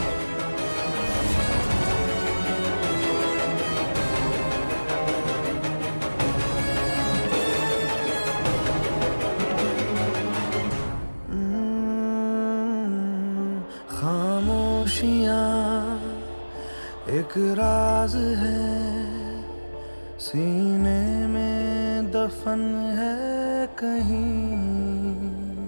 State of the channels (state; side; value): inverted; both; correlation -1.00